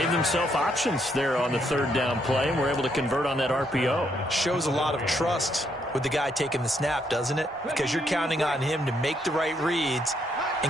themselves options there on the third down play and were able to convert on that RPO. Shows a lot of trust with the guy taking the snap, doesn't it? Because you're counting on him to make the right reads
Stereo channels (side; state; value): both; normal; correlation 0.74